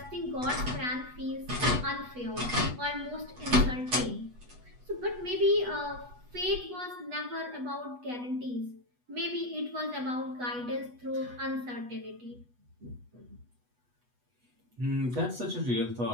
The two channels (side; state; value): left; late; 8.2 ms